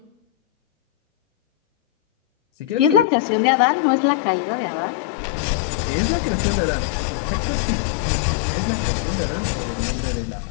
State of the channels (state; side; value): drops out; right; at 3.1 s